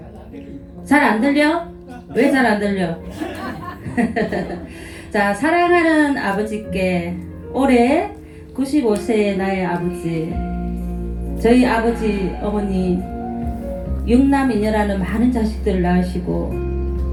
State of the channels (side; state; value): both; identical; correlation 1.00